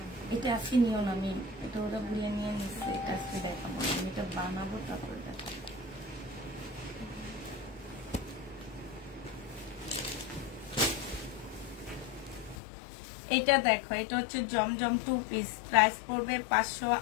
এটা আজকে নিও না, আমি এটা ওরা বুঝে নিয়ে নিচ্ছে, এটা আজকে দেখাবো, আমি এটা বানাবো তারপরে দেখাবো। এটা দেখো, এটা হচ্ছে জমজম 2 পিস, প্রাইস পড়বে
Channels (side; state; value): right; drops out; at 12.6 s